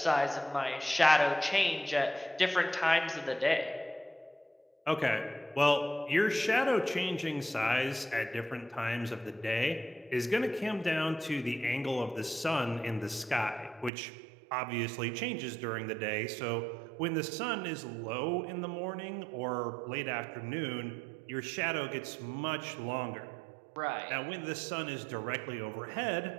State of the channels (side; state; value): left; drops out; at 13.9 s